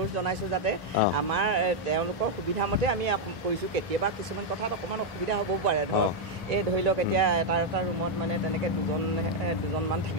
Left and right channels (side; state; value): both; normal; correlation 0.00